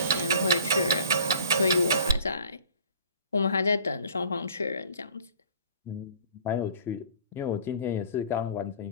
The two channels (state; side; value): inverted; both; correlation -0.49